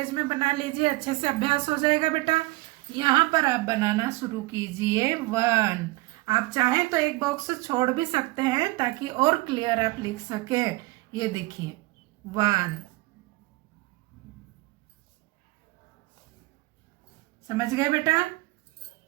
में बना लीजिए। अच्छे से अभ्यास हो जाएगा बेटा। यहाँ पर आप बनाना शुरू कीजिए 1। आप चाहें तो एक बॉक्स छोड़ भी सकते हैं ताकि और क्लियर आप लिख सके। ये देखिए 1। समझ गए बेटा?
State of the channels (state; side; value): quieter; left; 21.9 dB